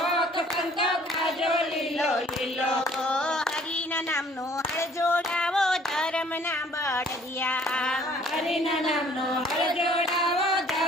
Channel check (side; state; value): both; normal; correlation 0.57